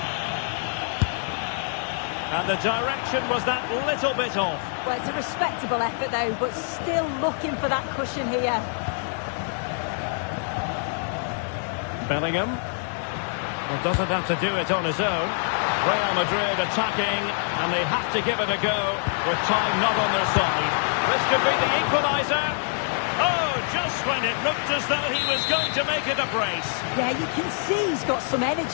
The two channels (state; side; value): silent; right; 62 dB below the other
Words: And the direction was that little bit off. Well, it's a respectable effort though, but still looking for that cushion here. Bellingham. Well, doesn't have to do it on his own. Real Madrid attacking, and they have to give it a go with time not on their side. This could be the equaliser. Oh, just when it looked as though he was going to make it a brace. Yeah, you can see he's got some